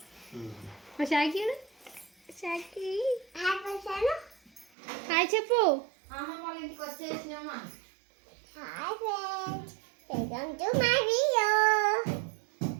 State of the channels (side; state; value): left; drops out; at 4.7 s